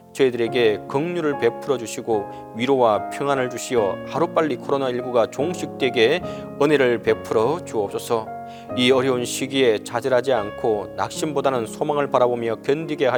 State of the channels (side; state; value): both; identical; correlation 1.00